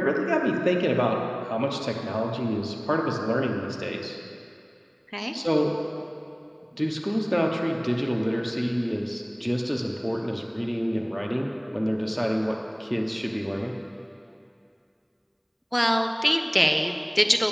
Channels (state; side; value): identical; both; correlation 1.00